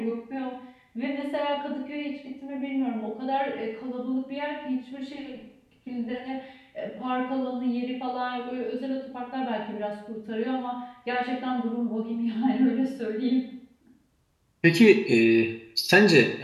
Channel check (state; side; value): identical; both; correlation 1.00